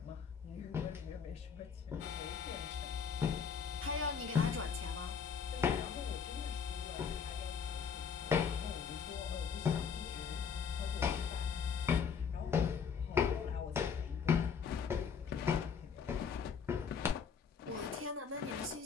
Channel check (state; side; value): quieter; right; 6.5 dB